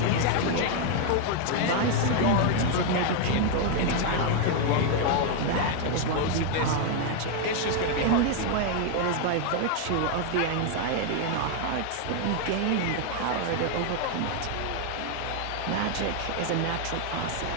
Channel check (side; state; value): both; different; correlation 0.00